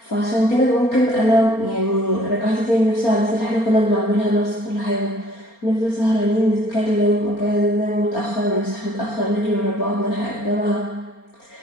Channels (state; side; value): late; right; 4.3 ms